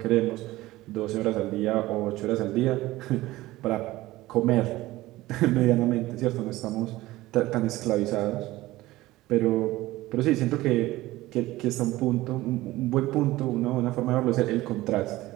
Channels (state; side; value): quieter; left; 17.7 dB